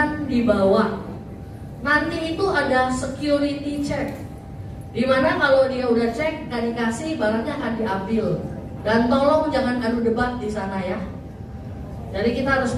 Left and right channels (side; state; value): both; identical; correlation 1.00